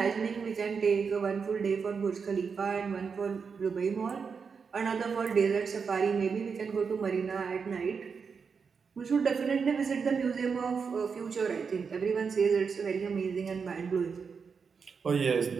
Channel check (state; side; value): quieter; left; 5.7 dB